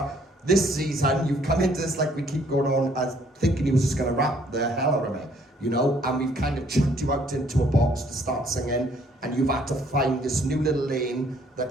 This season, you've come into this like we keep going on as thinking he was just going to rap the hell out of it, you know, and we've kind of chucked you out into a box to start singing, and you've had to find this new little lane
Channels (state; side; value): normal; both; correlation 0.63